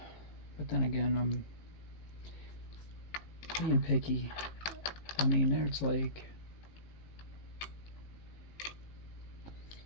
then again, I'm being picky. I mean, there's like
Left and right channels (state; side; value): late; right; 18 ms